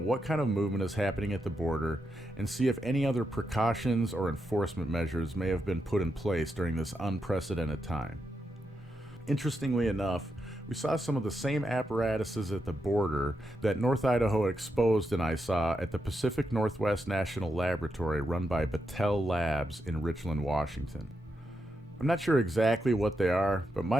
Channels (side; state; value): both; normal; correlation 0.84